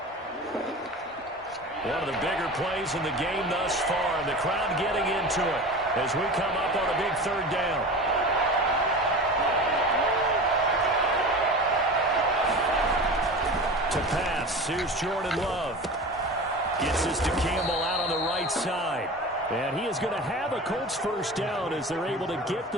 One of the bigger plays in the game thus far. And the crowd getting into it as we come up on a big 3rd down. To pass, here's Jordan Love. Gets this to Campbell out on the right side. And he is going to have a Colts 1st down as they're able to get the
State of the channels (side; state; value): both; normal; correlation 0.33